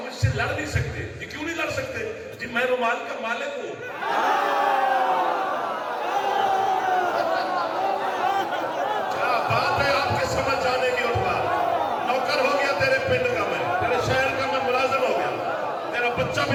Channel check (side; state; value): both; identical; correlation 1.00